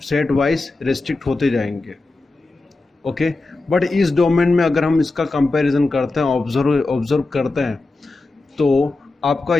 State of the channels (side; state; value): right; quieter; 3.3 dB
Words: वाइज रिस्ट्रिक्ट होते जाएंगे। ओके, बट इस डोमेन में अगर हम इसका कंपैरिजन करते हैं, ऑब्जर्व करते हैं, तो आपका